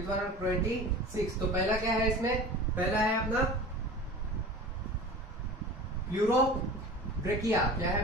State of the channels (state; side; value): normal; both; correlation 0.37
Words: 26। तो पहला क्या है इसमें? पहला है अपना प्लूरोब्रेकिया। क्या है?